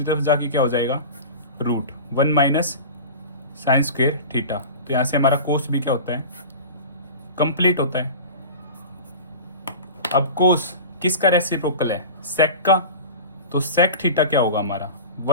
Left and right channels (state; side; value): inverted; both; correlation -0.33